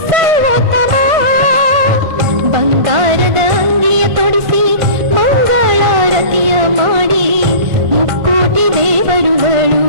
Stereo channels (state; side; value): late; left; 1.5 ms